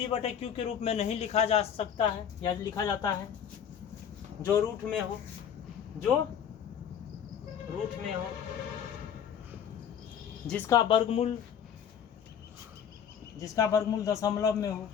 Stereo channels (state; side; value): quieter; right; 8.3 dB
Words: के रूप में नहीं लिखा जा सकता है या लिखा जाता है, जो रूट में हो, जो रूट में हो, जिसका वर्गमूल दशमलव में हो,